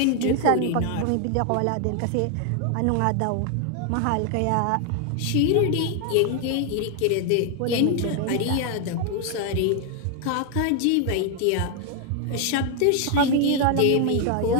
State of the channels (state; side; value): different; both; correlation 0.00